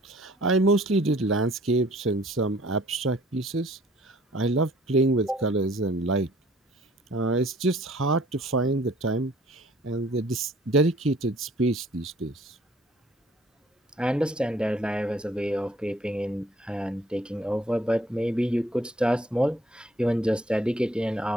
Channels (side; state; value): both; normal; correlation 0.56